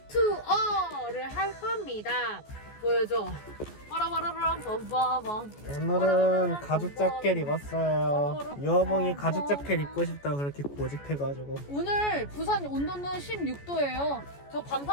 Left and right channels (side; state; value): right; late; 14 ms